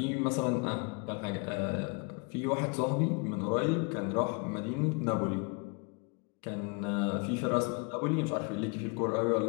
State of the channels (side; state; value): right; quieter; 32.9 dB